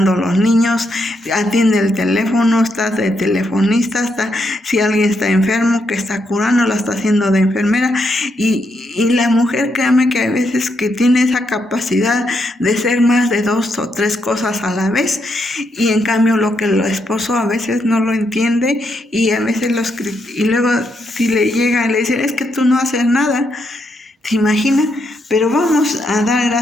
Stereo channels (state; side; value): normal; both; correlation 0.79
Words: a los niños, atiende el teléfono, está de telefonista, si alguien está enfermo, que está curando, la está haciendo de enfermera, y la mujer, créame que hay veces que tiene esa capacidad de ser más de 2 o 3 cosas a la vez, y en cambio lo que el esposo a veces no lo entiende, y a veces y luego si le llega y le dice, es que tú no haces nada, ¿te imaginas? Pero vamos a dar